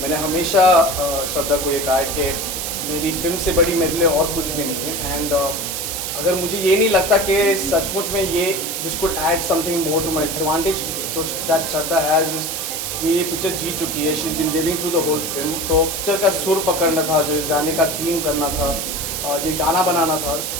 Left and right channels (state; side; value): noise; right; hiss, 3 dB below the sound